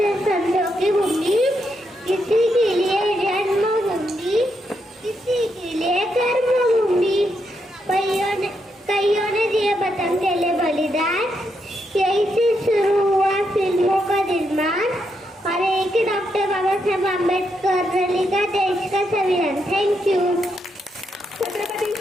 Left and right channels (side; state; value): both; normal; correlation 0.80